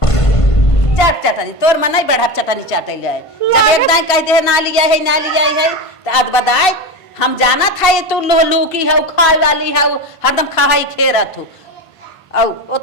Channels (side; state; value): right; late; 1.5 ms